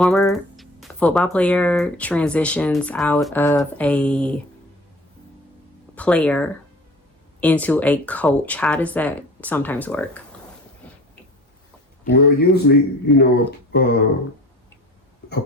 football player transitions out of a player into a coach? How does that sometimes work? Well, usually, you know, a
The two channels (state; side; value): normal; both; correlation 0.42